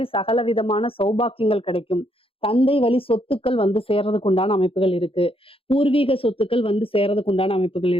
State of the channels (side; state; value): right; late; 0.27 ms